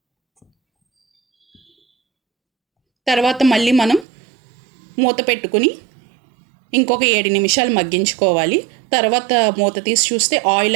తర్వాత మళ్ళీ మనం మూత పెట్టుకుని ఇంకొక 7 నిమిషాలు మగ్గించుకోవాలి. తర్వాత మూత తీసి చూస్తే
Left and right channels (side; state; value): left; drops out; at 4.0 s